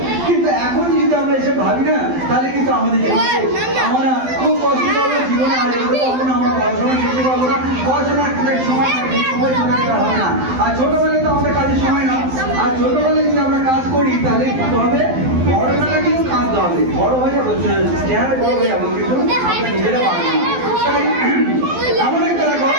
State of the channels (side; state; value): left; late; 12 ms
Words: কিন্তু এখন যদি আমরা এসে ভাবি না, তাহলে কিন্তু আমাদের আমরা খুব কষ্ট করবো, জীবনে আর এগোতে পারবো না, আমরা পড়াশোনা শিখতে পারবো না, পড়াশোনার সময় চলে গেলে হবে না। আর ছোটবেলায় তো আমাদের কাজের সময় না, আর ছোটবেলায় যদি আমরা কাজ করি তাহলে কি হবে, বড়বেলা কিন্তু কাঁদতে হবে, বড় হয়ে যাবো, চেহারা বড় হয়ে যাবো, কিন্তু আমরা নিজেরা পারবো না। তাই এমন একটা দেখো